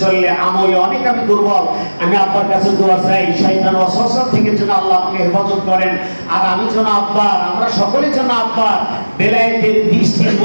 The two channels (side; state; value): both; inverted; correlation -1.00